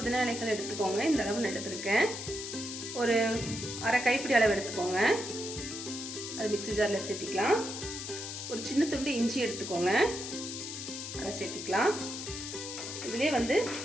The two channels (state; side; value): noise; left; hiss, 7 dB below the sound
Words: இலைகள் எடுத்துக்கோங்க. இந்த அளவு நான் எடுத்துருக்கேன். ஒரு அரை கைப்பிடி அளவு எடுத்துக்கோங்க. அது மிக்ஸி ஜாரில் சேர்த்திக்கலாம். ஒரு சின்ன துண்டு இஞ்சி எடுத்துக்கோங்க, அதை சேர்த்திக்கலாம். இதுலேயே